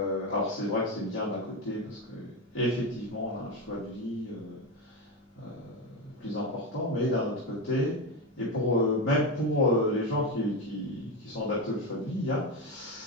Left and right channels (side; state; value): both; normal; correlation 0.14